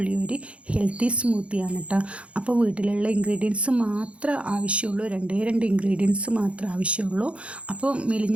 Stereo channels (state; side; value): late; left; 0.061 ms